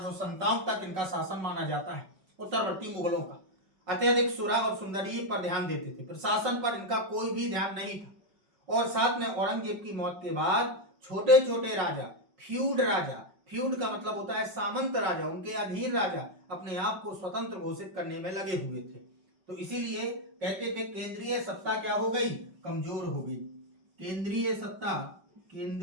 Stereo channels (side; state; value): left; late; 5.3 ms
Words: तक इनका शासन माना जाता है उत्तरवर्ती मुगलों का। अत्यधिक सुरा और सुंदरी पर ध्यान देते थे। प्रशासन पर इनका कोई भी ध्यान नहीं था। और साथ में औरंगजेब की मौत के बाद छोटे छोटे राजा, फ्यूड का मतलब होता है सामंत राजा, उनके अधीन राजा अपने आप को स्वतंत्र घोषित करने में लगे हुए थे। तो इसीलिए कहते थे केंद्रीय सत्ता क्या हो गई? कमजोर हो गई। केंद्रीय